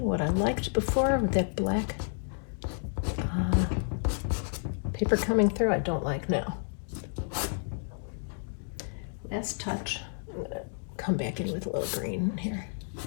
what I liked before with that black paper coming through I don't like now. Last touch. I'm going to come back in with a little green here.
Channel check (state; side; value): silent; right; digital silence